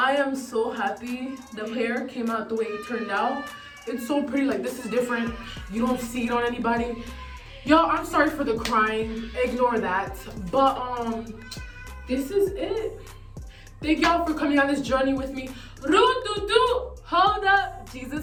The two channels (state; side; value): identical; both; correlation 1.00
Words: am so happy the hair came out the way it turned out. It's so pretty. Like, this is different. You don't see it on anybody. Y'all, I'm sorry for the crying. Ignore that. But this is it. Thank y'all for coming on this journey with me. Hold up.